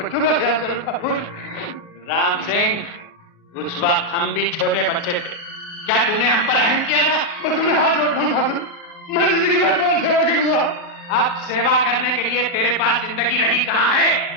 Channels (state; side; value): late; right; 33 ms